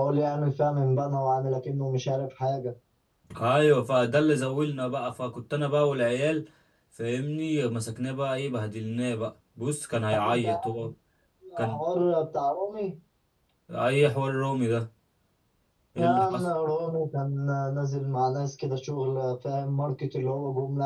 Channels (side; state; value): both; identical; correlation 1.00